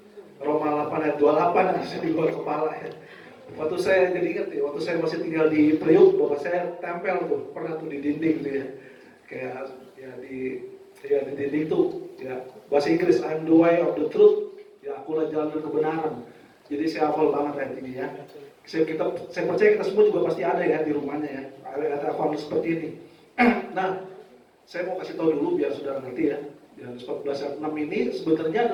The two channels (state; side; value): identical; both; correlation 1.00